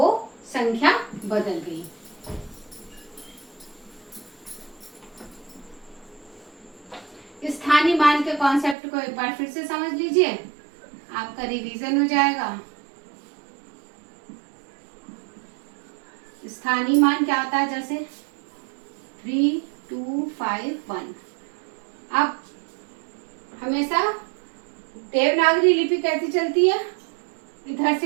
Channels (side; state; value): left; drops out; at 8.8 s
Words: संख्या बदल गई। स्थानीय मान के कॉन्सेप्ट को एक बार फिर से समझ लीजिए, आपका रिवीजन हो जाएगा। स्थानीय मान क्या होता है, जैसे 3, 2, 5, 1। अब हमेशा देवनागरी लिपि कैसी चलती है, इधर